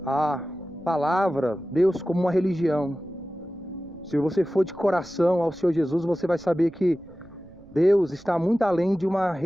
a palavra Deus como uma religião. Se você for de coração ao Senhor Jesus, você vai saber que Deus está muito além de uma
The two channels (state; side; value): noise; right; rumble, 24 dB below the sound